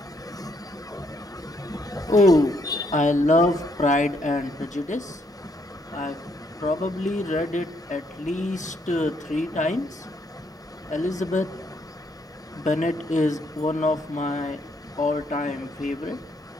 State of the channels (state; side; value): normal; both; correlation 0.72